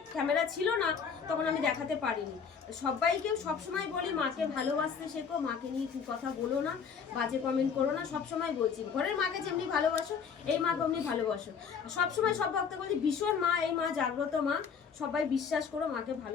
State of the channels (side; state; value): right; quieter; 6.4 dB